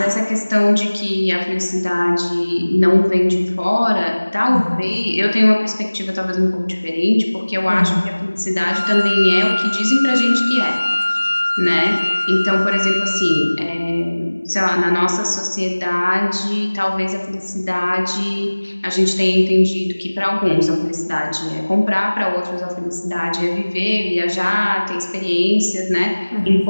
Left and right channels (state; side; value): inverted; both; correlation -1.00